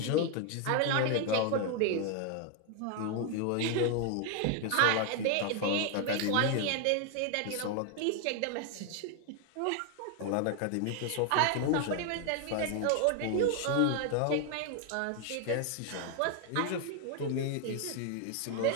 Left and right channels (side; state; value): both; different; correlation 0.01